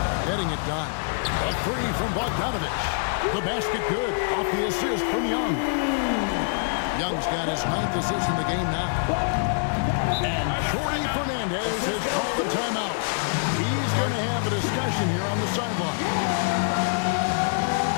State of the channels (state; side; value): silent; right; 56 dB below the other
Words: getting it done. A 3 from Bogdanovich. The basket good off the assist from Young. Young's got his 9th assist in the game now. And Jordy Fernandez has called a timeout. He's going to have a discussion here on the sideline.